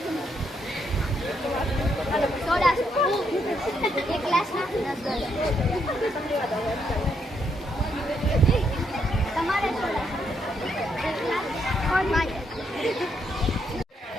સોડા એક ગ્લાસના 10 તમારે સોડા એક ગ્લાસ કોણ માંગે?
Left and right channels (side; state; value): both; normal; correlation 0.76